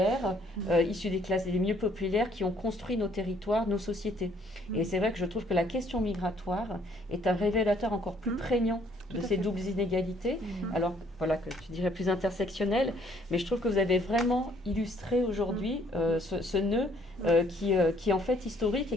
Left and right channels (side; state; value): both; normal; correlation 0.63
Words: issues des classes les mieux populaires, qui ont construit nos territoires, nos sociétés. Et c'est vrai que je trouve que la question migratoire est un révélateur encore plus prégnant de ces doubles inégalités, alors voilà, que tu dirais plus intersectionnelles, mais je trouve que vous avez vraiment illustré aujourd'hui ce nœud qui est en fait historique et